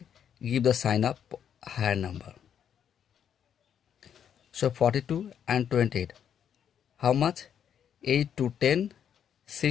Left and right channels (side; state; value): right; quieter; 8.7 dB